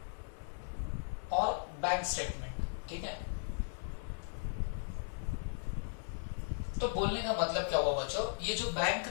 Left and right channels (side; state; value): right; silent; digital silence